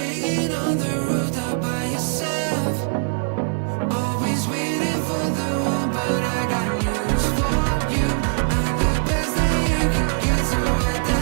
on the rooftop by yourself? Always waiting for the one, but I got news for you. I'm the best that you can get, so what the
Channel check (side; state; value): left; silent; digital silence